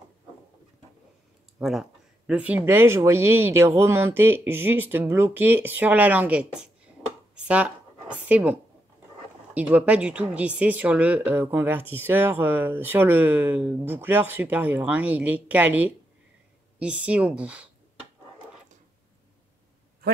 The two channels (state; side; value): normal; both; correlation 0.82